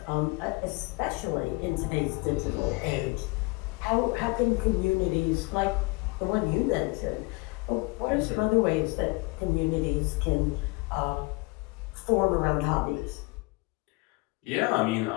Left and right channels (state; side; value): quieter; right; 25.9 dB